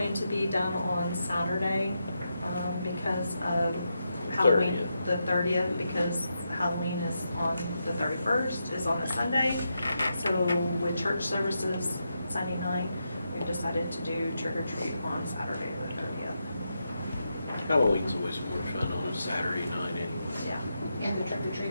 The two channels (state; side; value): inverted; both; correlation -0.85